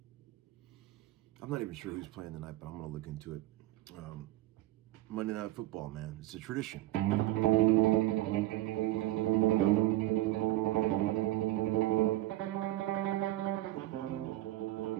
I'm not even sure who's playing tonight, but I'm going to look into it. Monday Night Football, man. It's a tradition.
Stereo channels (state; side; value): quieter; left; 16.0 dB